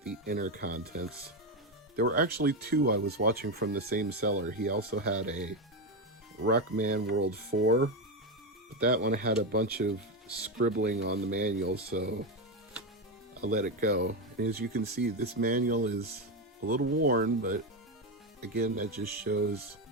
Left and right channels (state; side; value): normal; both; correlation 0.11